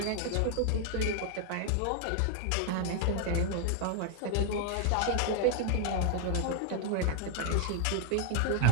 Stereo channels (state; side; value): different; both; correlation 0.00